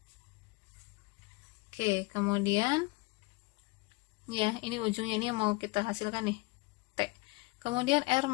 Oke, kemudian ya, ini ujungnya ini mau kita hasilkan nih, T. Kemudian R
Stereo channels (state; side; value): quieter; right; 23.6 dB